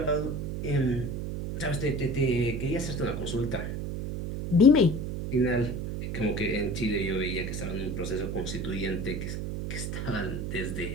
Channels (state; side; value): noise; right; hum, 4 dB below the sound